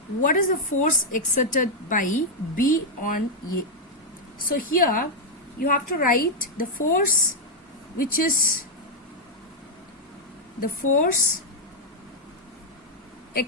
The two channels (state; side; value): normal; both; correlation -0.02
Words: What is the force exerted by B on A? So here you have to write the force which is the force